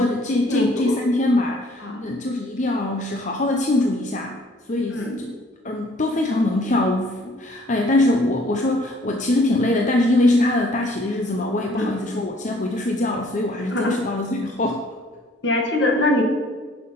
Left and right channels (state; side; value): normal; both; correlation 0.58